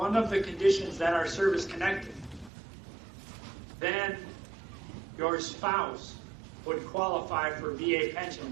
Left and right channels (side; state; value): left; drops out; at 2.5 s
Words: of the conditions that are service-connected, then your spouse would qualify for VA